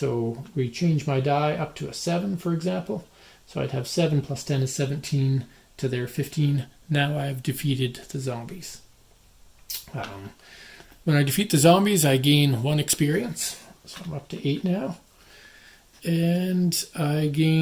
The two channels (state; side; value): identical; both; correlation 1.00